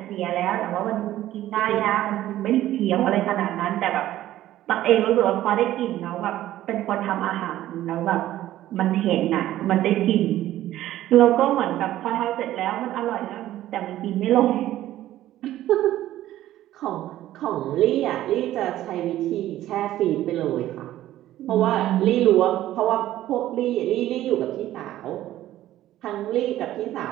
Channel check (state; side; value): quieter; left; 13.9 dB